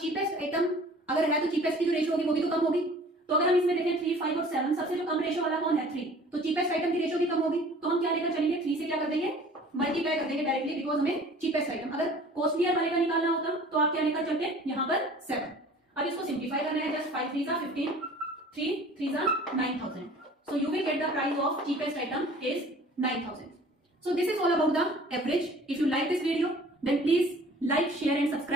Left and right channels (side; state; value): both; normal; correlation 0.48